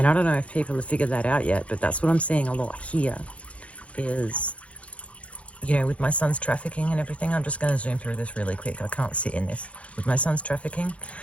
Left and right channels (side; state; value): right; late; 0.063 ms